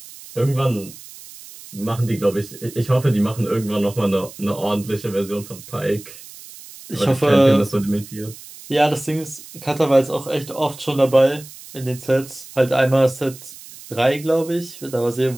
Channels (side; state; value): right; noise; hiss, 17 dB below the sound